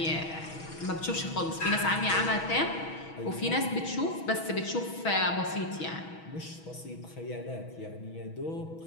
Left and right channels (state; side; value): late; right; 6.2 ms